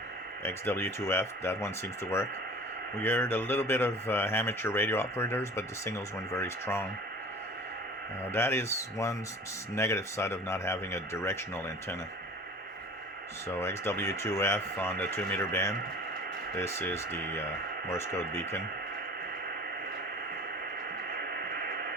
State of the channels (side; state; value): both; normal; correlation 0.42